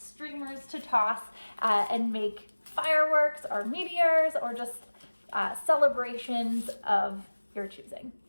to toss and make fireworks or meteors or just celebrations of your choosing.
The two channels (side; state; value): both; inverted; correlation -1.00